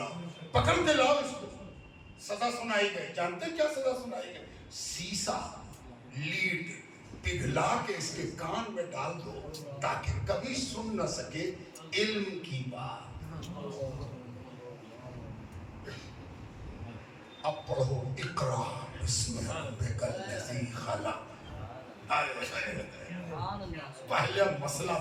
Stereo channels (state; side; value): identical; both; correlation 1.00